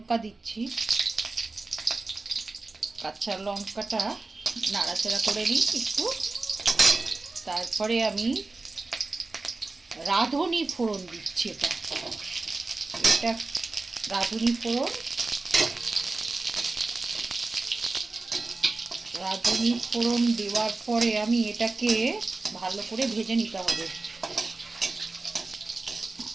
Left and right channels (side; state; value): left; quieter; 3.5 dB